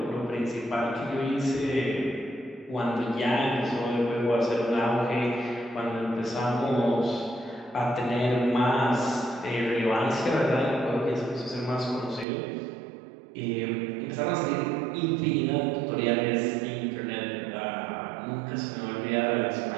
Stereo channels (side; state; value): left; drops out; at 12.2 s